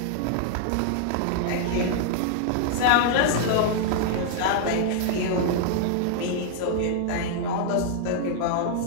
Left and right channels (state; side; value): different; both; correlation -0.01